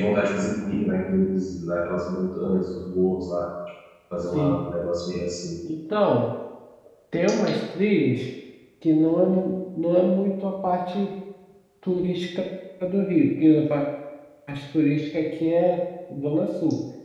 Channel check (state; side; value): identical; both; correlation 1.00